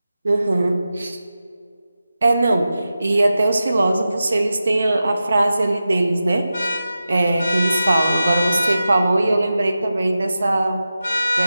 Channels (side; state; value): both; inverted; correlation -0.93